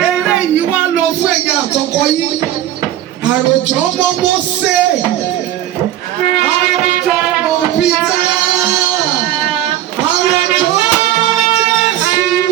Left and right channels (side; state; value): left; quieter; 12.7 dB